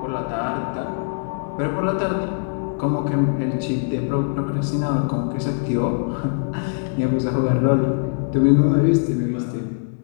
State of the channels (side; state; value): right; silent; 64 dB below the other